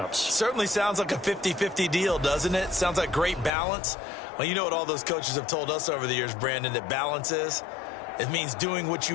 Certainly sounds like a 50-50 deal, doesn't it? Sounds like great balance. Well, you know what all those coaches have told us over the years, Brandon, that balance is? It means doing what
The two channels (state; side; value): drops out; right; at 3.5 s